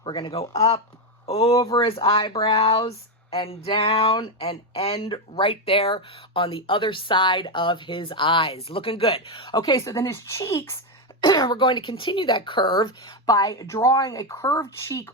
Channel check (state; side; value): normal; both; correlation 0.08